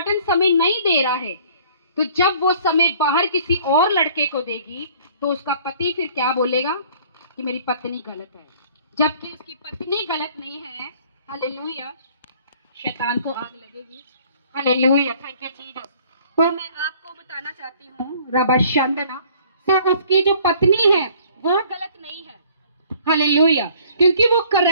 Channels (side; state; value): both; inverted; correlation -0.55